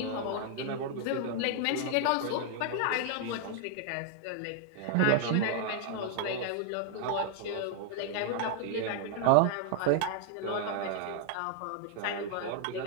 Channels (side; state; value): both; different; correlation 0.00